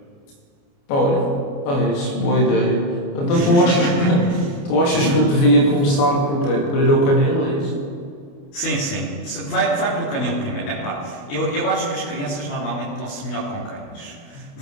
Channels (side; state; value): right; late; 29 ms